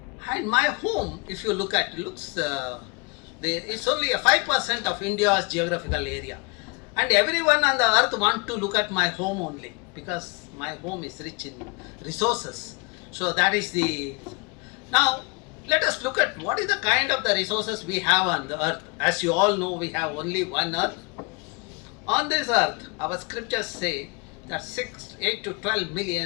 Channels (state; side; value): quieter; right; 30.4 dB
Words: and my home, if you look at it, it's only a 5% of India's geographical area. And everyone on the earth wants to look at my home only, because my home is rich in resources. So that is the... Now, let us look at what is the kind of the resources we have on the earth. As you all know, we have only one earth. On this earth, our scriptures say that 8 to 12